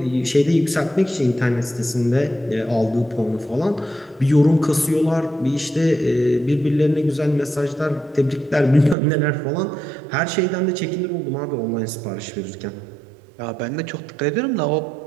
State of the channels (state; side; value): drops out; left; at 9.0 s